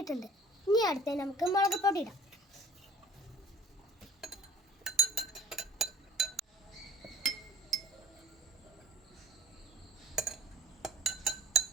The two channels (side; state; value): both; normal; correlation 0.48